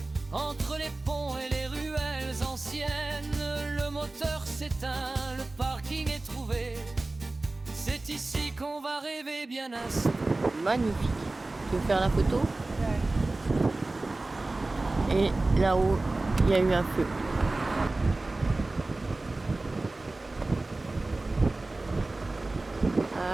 entre les ponts et les ruelles anciennes. Le moteur s'éteint, le parking est trouvé. C'est ici qu'on va rêver bien ainsi. Magnifique. Tu veux faire la photo? Et là-haut, il y a eu un feu.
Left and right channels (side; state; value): left; quieter; 3.1 dB